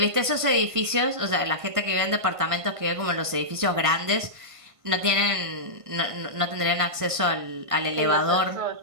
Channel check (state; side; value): late; left; 1.5 ms